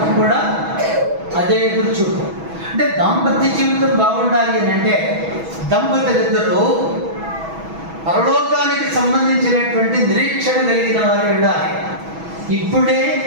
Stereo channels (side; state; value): left; late; 6.2 ms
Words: కూడా అదే ఎదురు చూపు. అంటే దాంపత్య జీవితం బాగుండాలి అని అంటే దంపతులిద్దరూ పరలోకానికి సంబంధించినటువంటి నిరీక్షణ కలిగిన వారు ఉండాలి. ఇప్పుడే